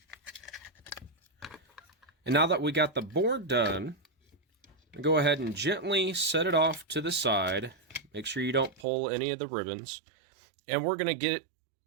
And now that we got the board done, go ahead and gently set it off to the side. Make sure you don't pull any of the ribbons. And we're going to get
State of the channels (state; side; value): drops out; left; at 8.8 s